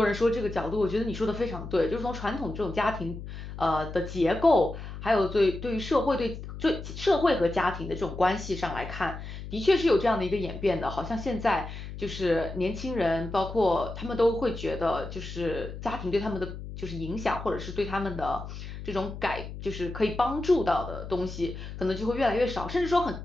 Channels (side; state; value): left; noise; hum, 10 dB below the sound